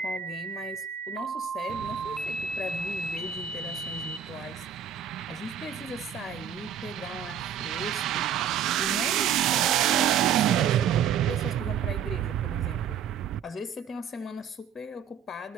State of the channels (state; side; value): quieter; left; 8.0 dB